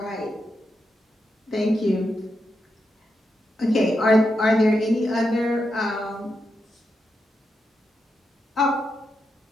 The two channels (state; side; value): normal; both; correlation 0.85